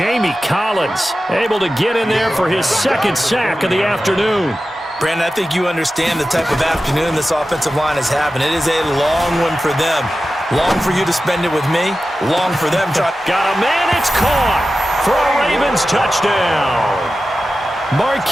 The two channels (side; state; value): both; normal; correlation 0.93